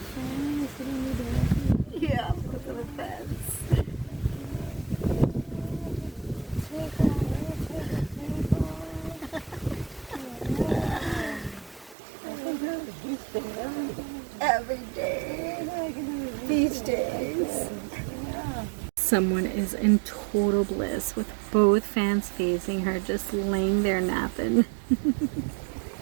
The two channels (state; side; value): drops out; left; at 12.0 s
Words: Yeah, look at the fence. Every day. Beach days. Someone is in total bliss with both fans facing her, just laying there napping.